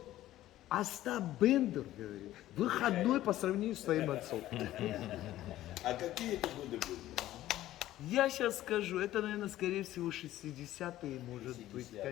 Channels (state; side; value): quieter; right; 14.3 dB